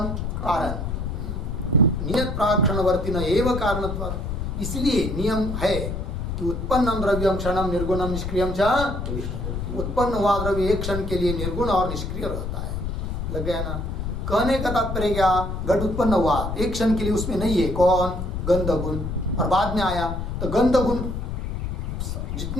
कारण। नियत प्राक्षणवर्ती न एव कारणत्वात्, इसलिए नियम है कि उत्पन्नम द्रव्यम क्षणम निर्गुणम निष्क्रियम च, उत्पन्न हुआ द्रव्य एक क्षण के लिए निर्गुण और निष्क्रिय रहता है। लग गया ना? कहने का तात्पर्य क्या? घट उत्पन्न हुआ एक क्षण के लिए, उसमें नहीं है कौन? गंध गुण, और बाद में आया तो गंध गुण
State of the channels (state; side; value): noise; left; rumble, 4 dB below the sound